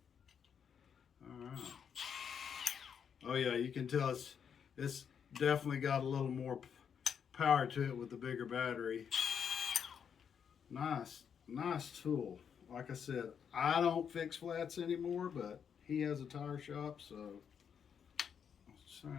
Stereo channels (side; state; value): right; quieter; 7.5 dB